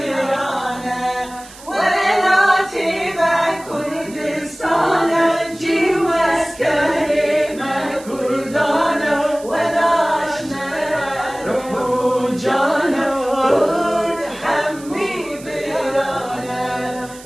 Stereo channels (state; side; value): noise; right; hiss, 19 dB below the sound